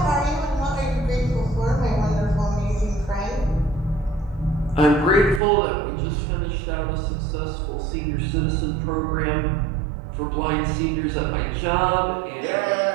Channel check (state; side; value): drops out; left; at 5.4 s